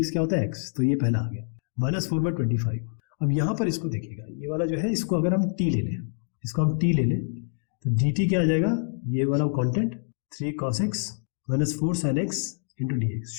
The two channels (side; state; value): right; silent; digital silence